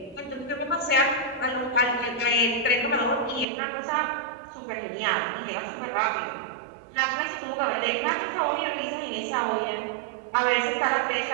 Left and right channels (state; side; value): drops out; left; at 3.5 s